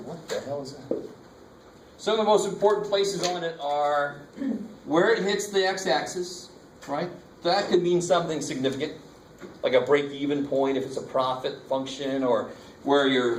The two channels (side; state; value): both; identical; correlation 1.00